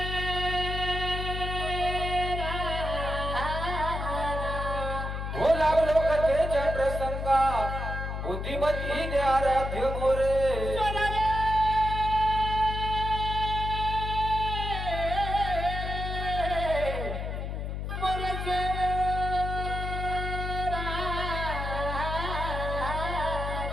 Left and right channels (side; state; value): left; noise; hum, 4 dB below the sound